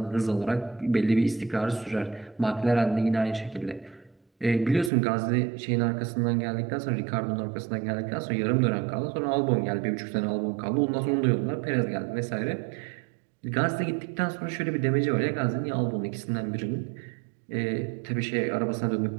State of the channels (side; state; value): left; drops out; at 4.9 s